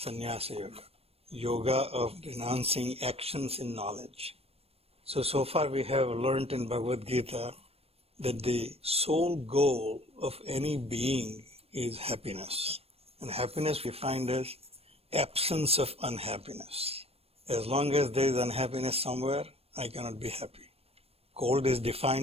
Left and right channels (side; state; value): left; late; 0.29 ms